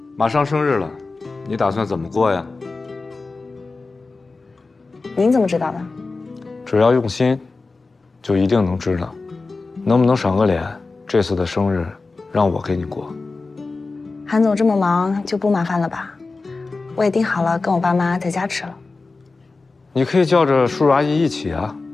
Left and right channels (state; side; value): quieter; right; 3.7 dB